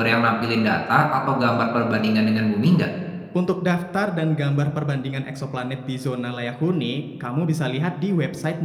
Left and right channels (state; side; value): identical; both; correlation 1.00